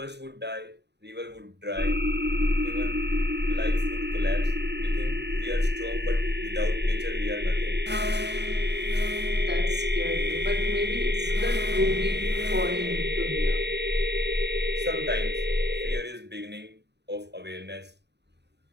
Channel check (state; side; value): late; left; 0.50 ms